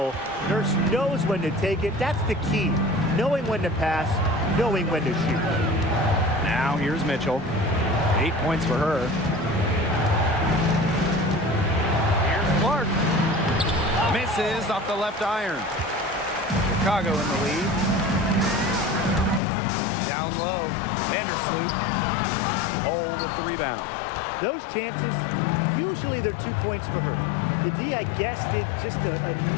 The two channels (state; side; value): drops out; right; at 19.4 s